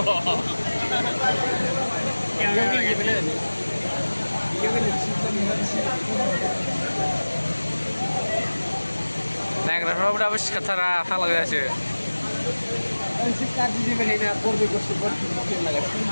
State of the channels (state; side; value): inverted; both; correlation -1.00